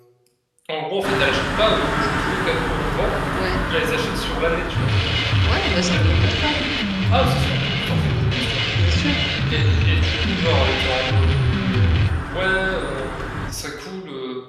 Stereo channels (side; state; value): both; identical; correlation 1.00